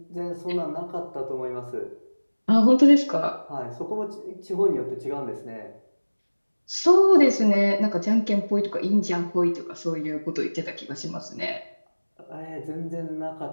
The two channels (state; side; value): inverted; both; correlation -1.00